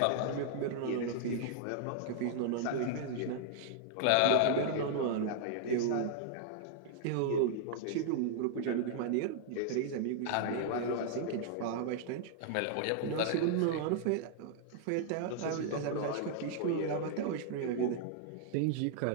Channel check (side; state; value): both; different; correlation -0.01